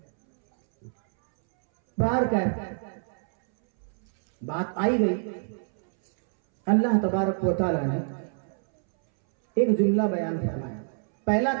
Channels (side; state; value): left; silent; 61 dB below the other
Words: बाहर क्या बात आई गई। अल्लाह तबारक व तआला ने एक जुमला बयान फरमाया। पहला